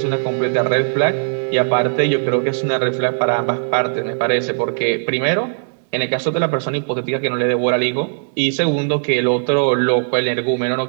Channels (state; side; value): silent; left; digital silence